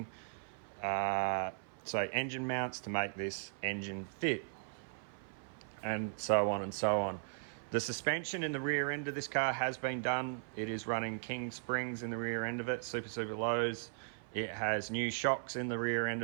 So engine mounts to make this engine fit, and so on and so on. The suspension in the rear end of this car has been done. It is running King springs in the rear end of it, super lows. It has new shocks in the rear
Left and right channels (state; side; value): silent; left; 53 dB below the other